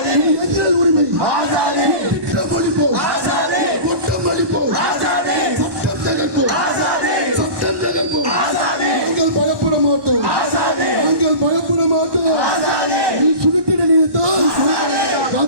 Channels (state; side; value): late; left; 1.1 ms